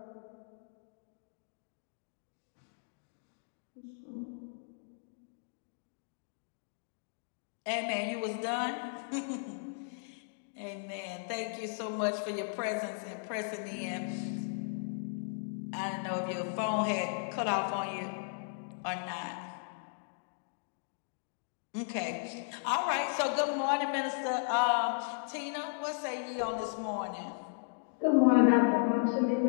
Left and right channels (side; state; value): right; silent; digital silence